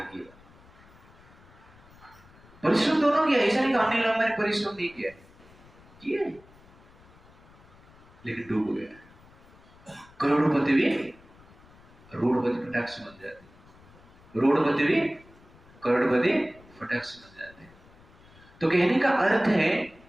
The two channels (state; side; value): noise; left; rumble, 25 dB below the sound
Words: परिश्रम दोनों किया, ऐसा नहीं कि अनिल अंबानी परिश्रम नहीं किया, किया लेकिन डूब गया। करोड़पति भी रोडपति फटाक से बन जाते, रोडपति भी करोड़पति फटाक से बन जाते। तो कहने का अर्थ है